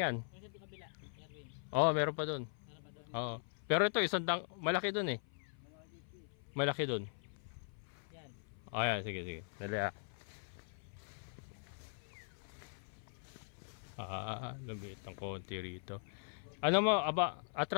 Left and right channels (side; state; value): right; silent; 51 dB below the other